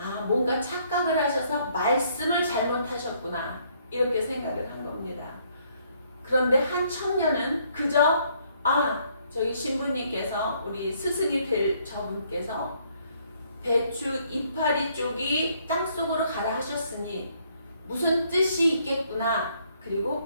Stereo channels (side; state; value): both; inverted; correlation -0.67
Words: 뭔가 착각을 하셔서 말씀을 잘못하셨구나. 이렇게 생각을 한 겁니다. 그런데 한 청년은 그저 저희 신부님께서 우리 스승이 될 저분께서 배추 이파리 쪽이 땅속으로 가라 하셨으니 무슨 뜻이 있겠구나. 그리고